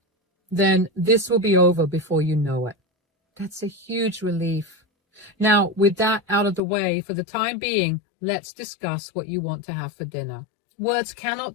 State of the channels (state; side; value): drops out; right; at 6.6 s